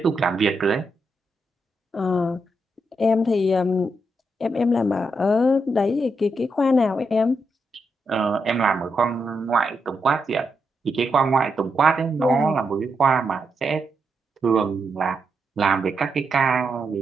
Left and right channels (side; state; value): both; normal; correlation 0.83